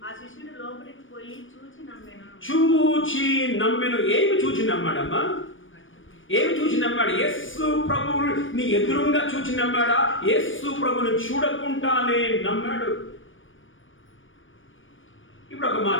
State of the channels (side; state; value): right; late; 0.57 ms